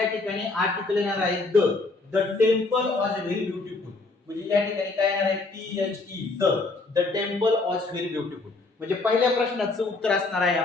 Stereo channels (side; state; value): right; quieter; 3.5 dB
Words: ठिकाणी आर्टिकल येणार आहे the temple was very beautiful. म्हणजे या ठिकाणी काय येणार आहे, THE the temple was very beautiful. म्हणजे पहिल्या प्रश्नाचं उत्तर असणार आहे